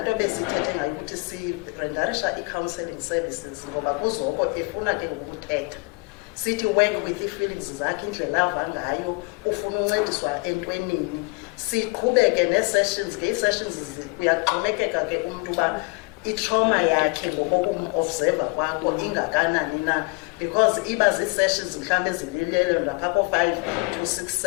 besithethe ngayo ukuthi sirendarisha i-counselling services, ngoba kuzoko efuna ke ngokuthetha. Sithi work with ii-feelings zakhe, indlela ava ngayo, ufuna uncediswa entwenini. Siqhubeke nee-sessions, ngee-sessions kuyaxhomekeka ke umntu uba i-trauma yakhe ngokokumobserva kwakho ingakanani na, because iba zii-sessions mhlawumbi ezililelo lapha ko-5 to 6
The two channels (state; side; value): quieter; right; 29.9 dB